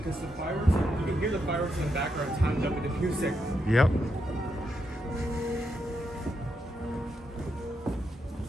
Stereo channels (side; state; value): both; normal; correlation 0.82